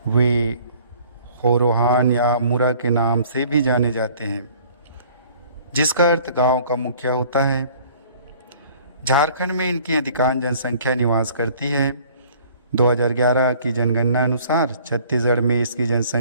वे होरोहान या मुरा के नाम से भी जाने जाते हैं, जिसका अर्थ गांव का मुखिया होता है। झारखंड में इनकी अधिकांश जनसंख्या निवास करती है। 2011 की जनगणना अनुसार छत्तीसगढ़ में इसकी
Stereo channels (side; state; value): both; inverted; correlation -0.54